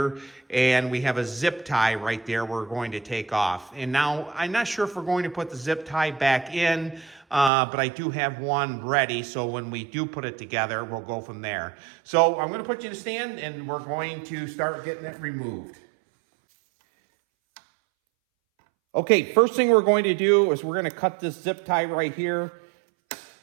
and we have a zip tie right there we're going to take off. And now, I'm not sure if we're going to put the zip tie back in, but I do have one ready, so when we do put it together, we'll go from there. So I'm going to put you in a stand, and we're going to start getting it removed. Okay, first thing we're going to do is we're going to cut this zip tie right here.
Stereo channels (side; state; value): left; drops out; at 7.5 s